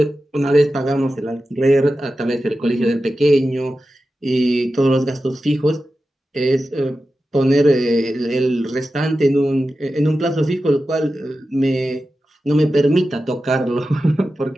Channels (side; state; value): both; normal; correlation 0.92